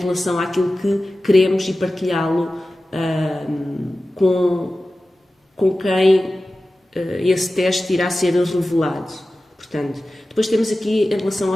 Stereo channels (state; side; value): normal; both; correlation 0.95